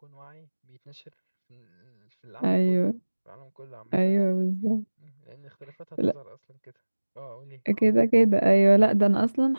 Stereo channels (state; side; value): inverted; both; correlation -1.00